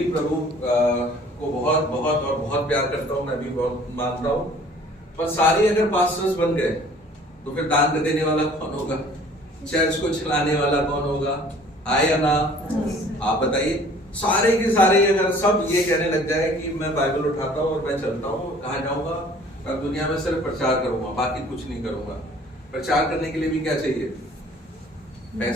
प्रभु को बहुत बहुत और बहुत प्यार करता हूँ, मैं भी बहुत मानता हूँ, पर सारे अगर पास्टर्स बन गए तो फिर दान देने वाला कौन होगा? चर्च को चलाने वाला कौन होगा? आया ना? आप बताइए। सारे के सारे अगर सब ये कहने लग जाए कि मैं बाइबल उठाता हूँ और मैं चलता हूँ, कहाँ जाऊंगा? मैं दुनिया में सिर्फ प्रचार करूंगा, बाकी कुछ नहीं करूंगा। प्रचार करने के लिए भी क्या चाहिए?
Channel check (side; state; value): both; normal; correlation 0.52